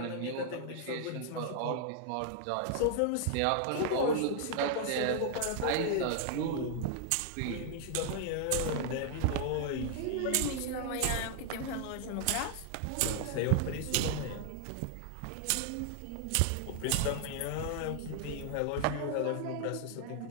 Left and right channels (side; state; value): both; different; correlation 0.00